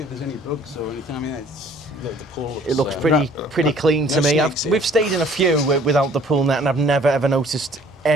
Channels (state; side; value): normal; both; correlation 0.56